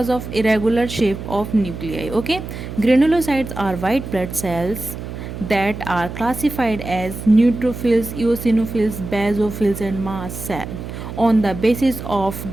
of irregular shape of nuclei, okay. Granulocytes are white blood cells that are classified as neutrophils, eosinophils, basophils and mast cell on the basis of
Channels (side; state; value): right; noise; hum, 9 dB below the sound